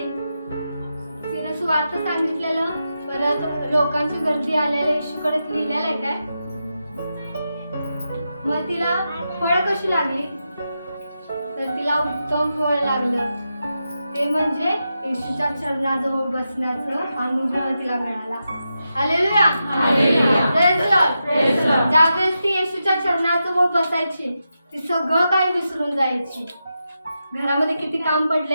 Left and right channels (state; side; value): inverted; both; correlation -0.88